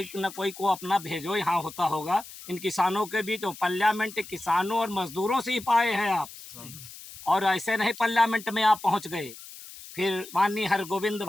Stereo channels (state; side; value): noise; left; hiss, 16 dB below the sound